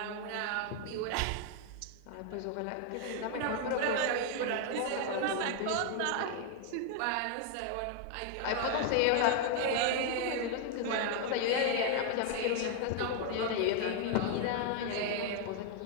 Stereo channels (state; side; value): different; both; correlation 0.00